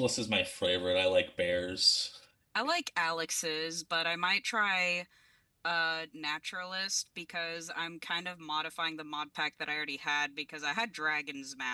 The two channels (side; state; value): both; identical; correlation 1.00